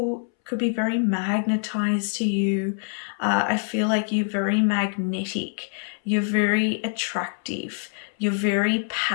could be very magnetized to you. I feel like you're very magnetic. You're very attractive. You're very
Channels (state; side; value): silent; right; 62 dB below the other